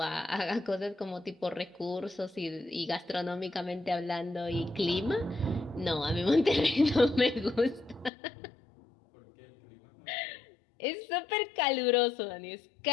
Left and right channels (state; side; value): drops out; right; at 8.1 s